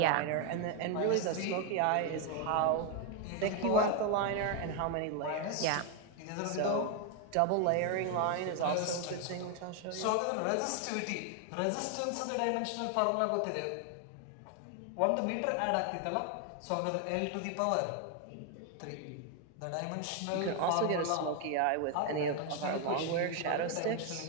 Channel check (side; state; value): both; different; correlation 0.01